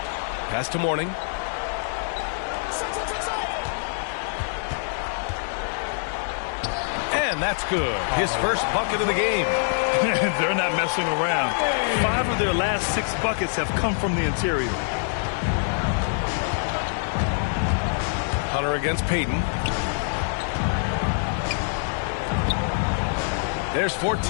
Pass to Mourning. And that's good. His first bucket of the game. They're not messing around. 5 of their last 6 buckets have come from the interior. Hunter against Payton. There's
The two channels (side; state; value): right; silent; digital silence